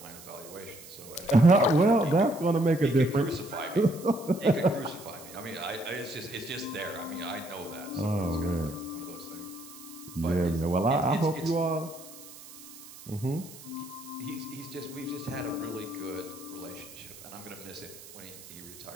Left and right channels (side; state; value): right; noise; hiss, 17 dB below the sound